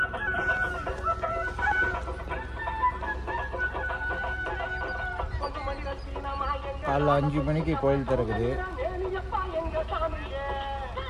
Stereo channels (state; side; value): identical; both; correlation 1.00